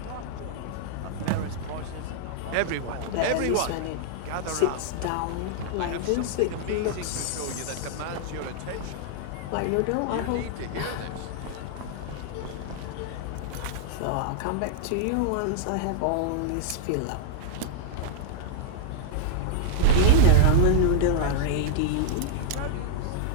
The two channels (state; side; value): different; both; correlation -0.01